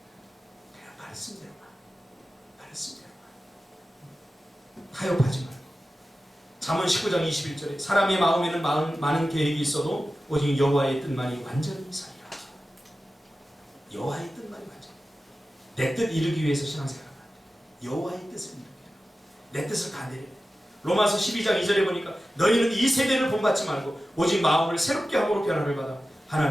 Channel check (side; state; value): both; normal; correlation 0.94